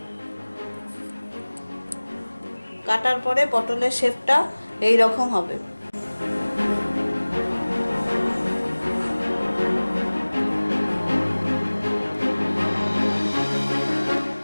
কাটার পরে পটলের শেপটা এই রকম হবে।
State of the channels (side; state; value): both; inverted; correlation -1.00